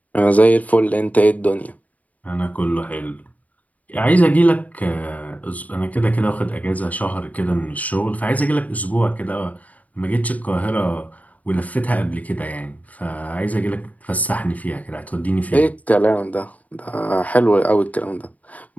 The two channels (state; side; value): late; right; 0.073 ms